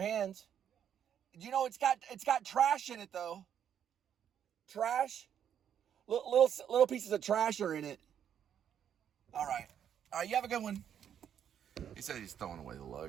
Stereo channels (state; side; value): quieter; left; 9.1 dB